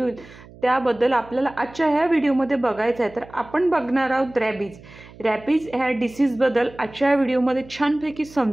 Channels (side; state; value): right; noise; hum, 21 dB below the sound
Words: त्याबद्दल आपल्याला आजच्या ह्या व्हिडिओमध्ये बघायचं आहे. तर आपण बघणार आहोत रॅबीज. रॅबीज ह्या डिसीजबद्दल आजच्या व्हिडिओमध्ये छानपैकी